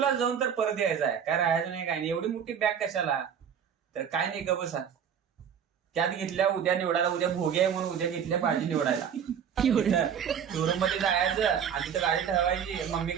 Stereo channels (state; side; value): quieter; left; 8.0 dB